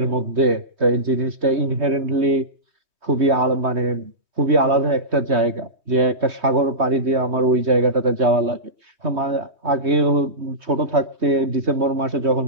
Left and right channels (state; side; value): late; left; 3.2 ms